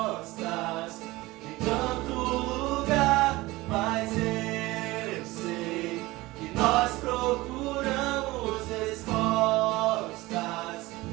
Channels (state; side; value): quieter; left; 20.0 dB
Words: em tanto lugar, mas eu sei que nós procuramos respostas.